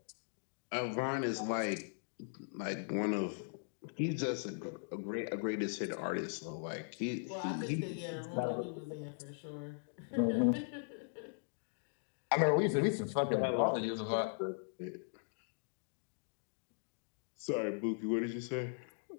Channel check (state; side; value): silent; right; digital silence